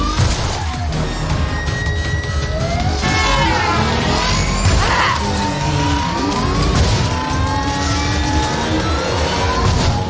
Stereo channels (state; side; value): identical; both; correlation 1.00